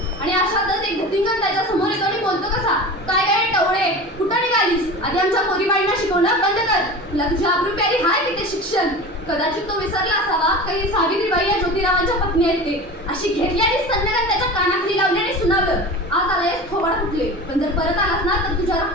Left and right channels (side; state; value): both; normal; correlation 0.33